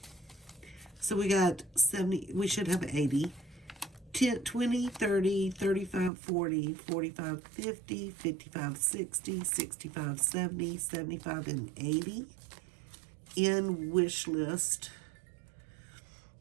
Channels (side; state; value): left; drops out; at 6.1 s